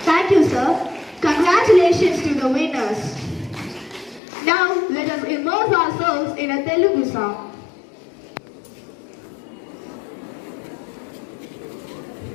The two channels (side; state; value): right; drops out; at 4.2 s